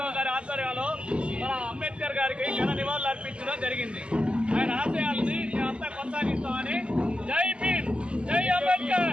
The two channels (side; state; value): left; late; 0.052 ms